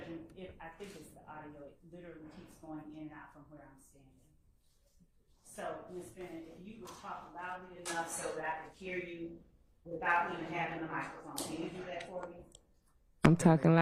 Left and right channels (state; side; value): identical; both; correlation 1.00